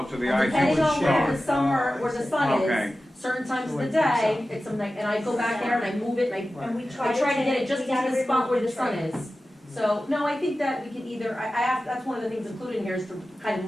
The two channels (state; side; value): normal; both; correlation 0.95